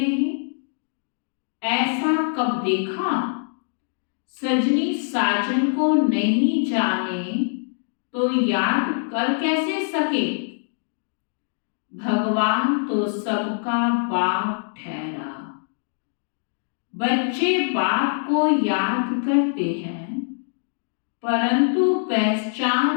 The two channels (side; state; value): right; silent; digital silence